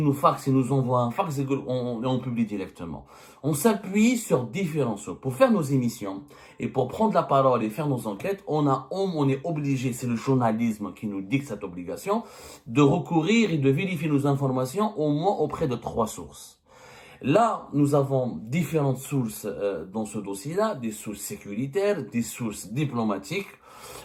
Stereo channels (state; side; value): identical; both; correlation 1.00